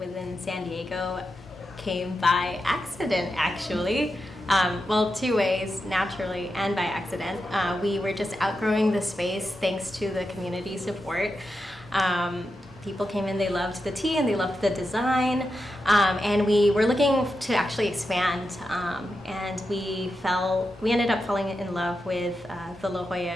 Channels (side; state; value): both; normal; correlation 0.88